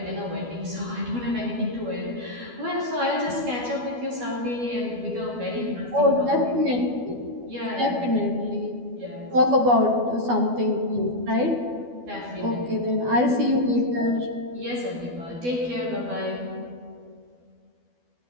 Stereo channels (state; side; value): late; left; 12 ms